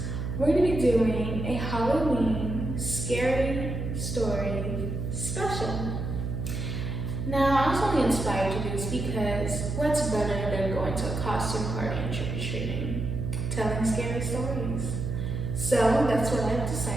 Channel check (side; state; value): right; noise; hum, 3 dB below the sound